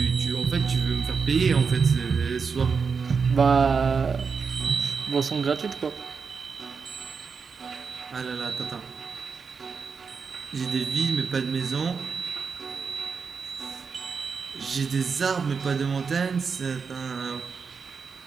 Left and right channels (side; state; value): left; quieter; 5.6 dB